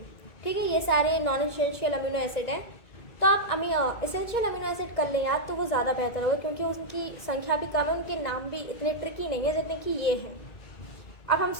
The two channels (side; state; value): right; late; 1.9 ms